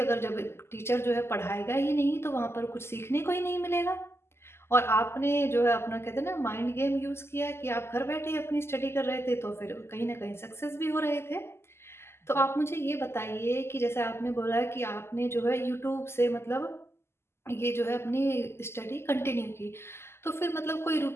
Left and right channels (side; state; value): right; late; 0.12 ms